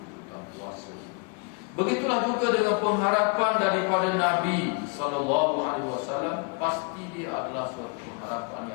puasa. Begitulah juga dengan pengharapan daripada Nabi SAW, pasti dia adalah suatu pengharapan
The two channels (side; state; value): right; quieter; 34.2 dB